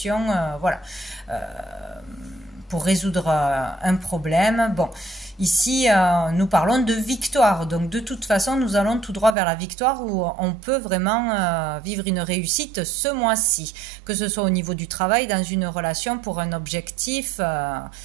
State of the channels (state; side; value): drops out; left; at 9.3 s